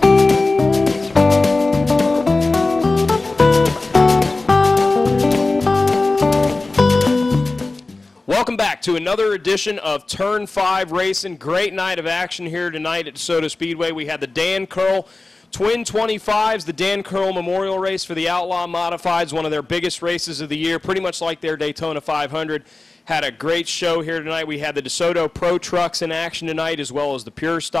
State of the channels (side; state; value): right; quieter; 3.3 dB